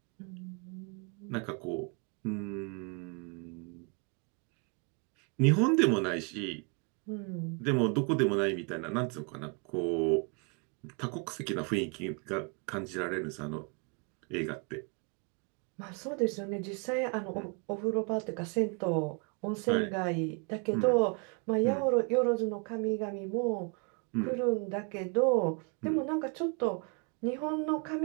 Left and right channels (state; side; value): quieter; left; 35.0 dB